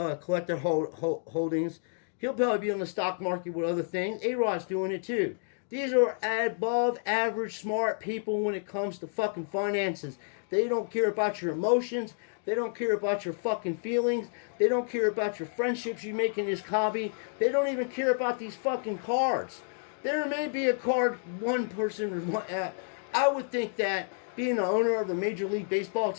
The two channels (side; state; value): right; silent; digital silence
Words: holdings. He'll probably be on the stock market with other things. A-Rod's doing it too. These are above average smart people when it comes to fucking finances. They don't care about your emotions. They don't care about your fucking feelings. They don't care about your friendships you make in this hobby. They don't even care about these fucking cards. There may be a card one person. I would think that being the owner of a Major League Baseball